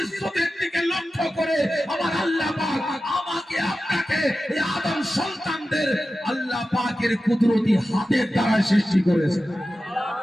দিকে লক্ষ্য করে আমার আল্লাহ পাক আমাকে আপনাকে এই আদম সন্তানদের আল্লাহ পাকের কুদরতি হাতের দ্বারা সৃষ্টি করেছেন।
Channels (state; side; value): normal; both; correlation 0.93